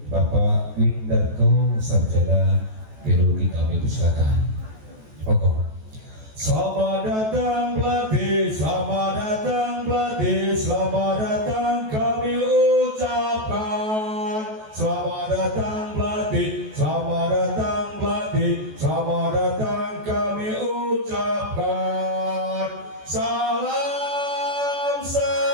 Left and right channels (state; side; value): late; left; 14 ms